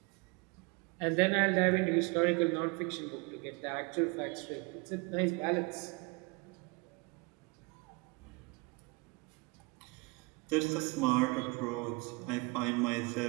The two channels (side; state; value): left; quieter; 27.7 dB